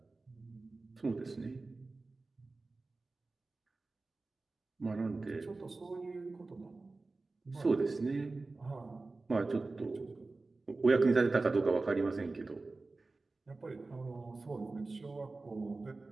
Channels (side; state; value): left; quieter; 3.5 dB